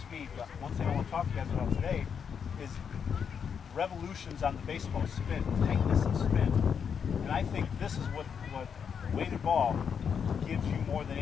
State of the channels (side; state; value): right; quieter; 7.0 dB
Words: but one thing I want to talk to you guys about today is revolutions on the baseball, spin, tightness and spin. And I think this is what weighted ball gives you more than